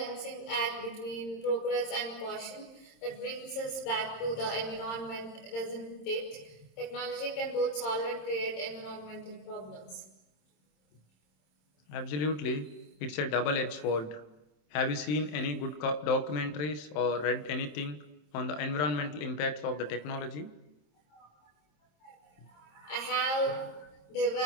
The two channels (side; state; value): right; late; 27 ms